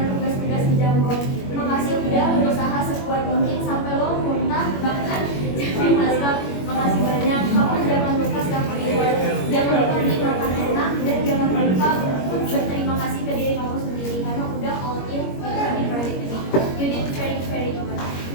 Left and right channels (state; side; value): late; right; 21 ms